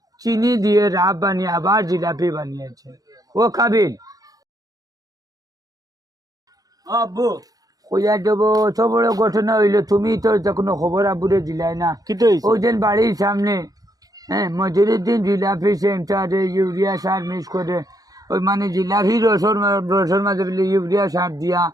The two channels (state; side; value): late; left; 0.18 ms